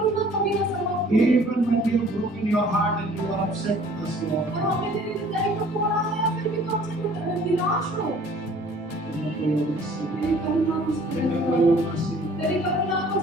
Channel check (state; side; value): normal; both; correlation 0.53